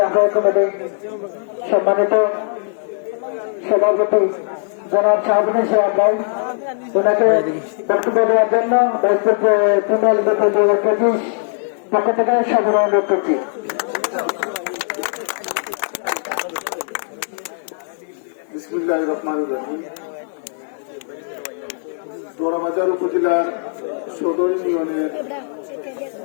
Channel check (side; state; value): right; silent; 66 dB below the other